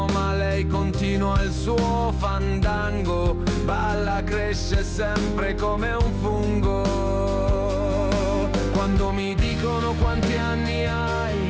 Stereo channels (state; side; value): identical; both; correlation 1.00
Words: ma lei continua il suo fandango. Balla, cresce sempre come un fungo. Quando mi dicono quanti anni